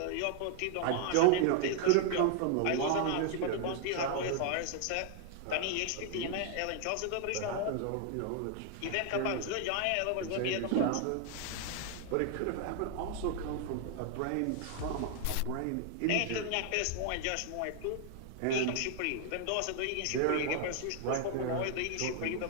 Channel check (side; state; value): both; different; correlation 0.00